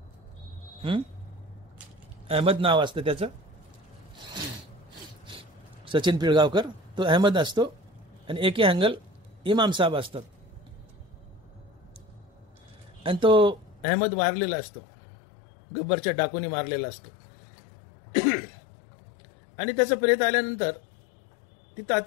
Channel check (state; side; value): drops out; right; at 13.9 s